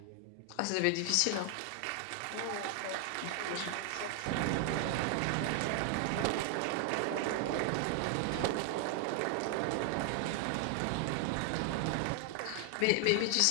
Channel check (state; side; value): different; both; correlation 0.00